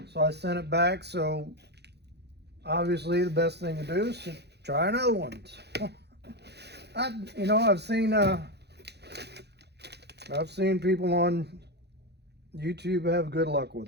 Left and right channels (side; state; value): left; late; 0.48 ms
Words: So I sent it back. So obviously the best thing to do is to try another one. I've seen people on YouTube have good luck with